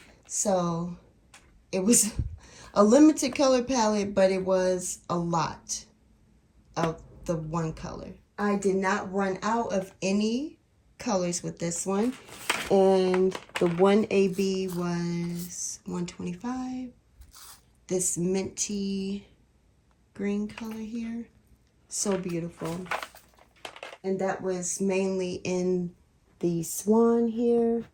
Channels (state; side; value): identical; both; correlation 1.00